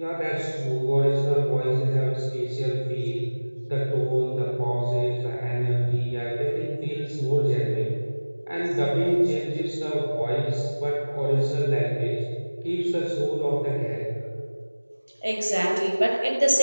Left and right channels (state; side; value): inverted; both; correlation -1.00